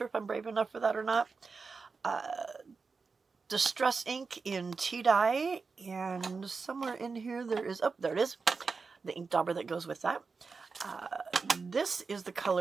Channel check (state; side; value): quieter; left; 4.7 dB